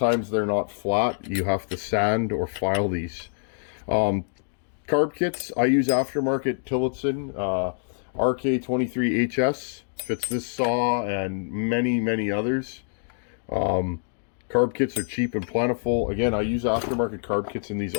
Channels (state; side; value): silent; right; digital silence